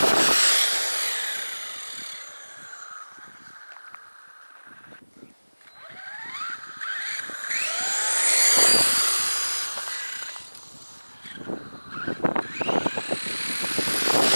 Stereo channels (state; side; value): inverted; both; correlation -1.00